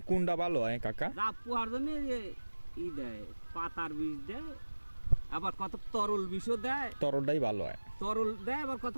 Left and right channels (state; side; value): inverted; both; correlation -1.00